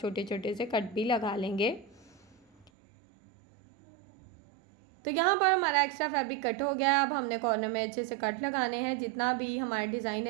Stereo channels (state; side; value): drops out; left; at 2.7 s